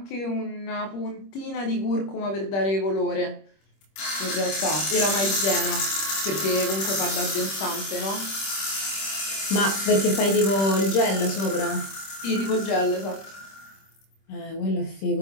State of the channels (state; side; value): late; right; 26 ms